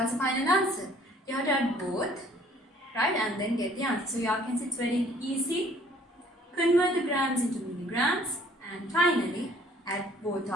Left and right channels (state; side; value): normal; both; correlation 0.58